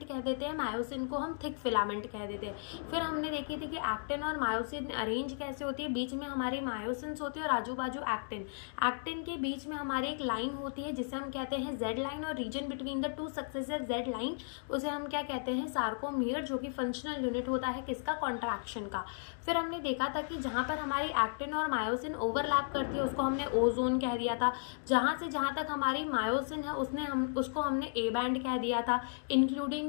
कह देते हैं, मायोसिन को हम थिक फिलामेंट कह देते हैं। फिर हमने देखी थी कि एक्टिन और मायोसिन अरेंज कैसे होती है, बीच में हमारी मायोसिन्स होती है और आजू बाजू एक्टिन। एक्टिन के बीच में हमारी एक लाइन होती है जिसे हम कहते हैं जेड लाइन, और region between the two successive Z line उसे हम क्या कहते हैं, सार्कोमियर, जो कि फंक्शनल यूनिट होता है किसका, कॉन्ट्रैक्शन का। फिर हमने देखा था कि जहां पर हमारी एक्टिन और मायोसिन ओवरलैप करती है उसको हमने ओ जोन कह दिया था। जहां से जहां तक हमारी मायोसिन है उसको हमने ए बैंड कह दिया था, इंक्लूडिंग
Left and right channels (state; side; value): silent; right; digital silence